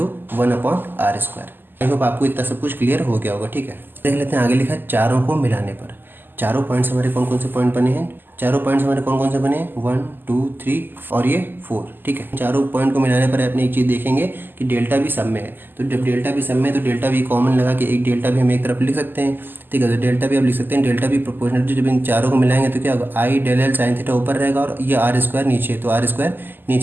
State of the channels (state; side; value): late; left; 0.093 ms